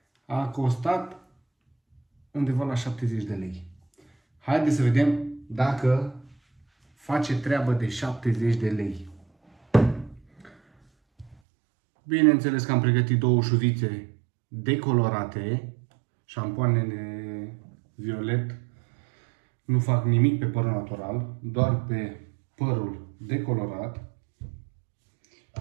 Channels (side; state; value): left; drops out; at 11.4 s